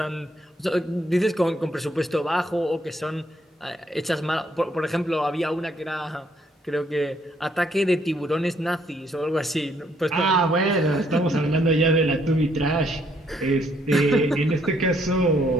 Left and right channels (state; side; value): normal; both; correlation 0.69